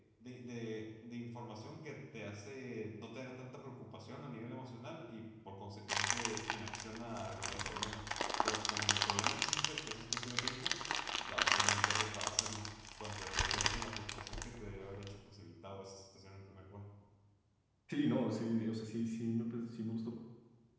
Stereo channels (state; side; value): identical; both; correlation 1.00